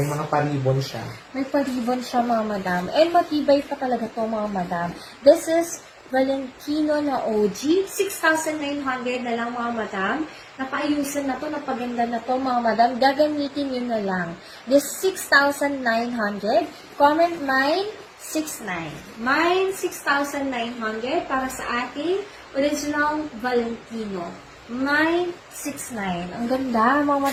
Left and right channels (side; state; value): both; identical; correlation 1.00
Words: mga paribon siya. May paribon siya, mga madam. And matibay pa talaga to, mga madam. This is Valentino na OG. 6,900 na lang, mga madam. Napaayusan na to, napaganda na to, mga madam. Gagamitin nyo na lang. This 6,900. Comment mine, 6,900. Mine, 6,900 para sa ating original Valentino. Mine, 6,900. Ang ganda, mga